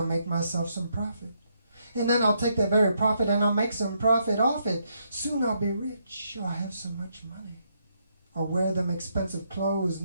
make myself some profit. And then I'll take that very profit and I'll make some profit off it. Soon I'll be rich. I'll have so much money. I'll wear them expensive clothes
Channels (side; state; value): both; inverted; correlation -0.76